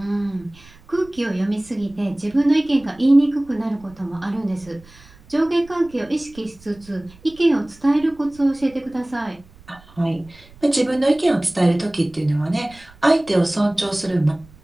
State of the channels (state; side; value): noise; right; rumble, 25 dB below the sound